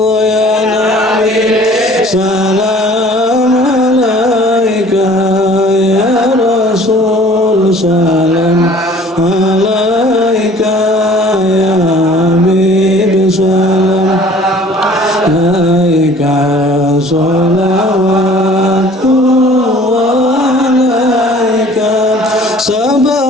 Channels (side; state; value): both; normal; correlation 0.50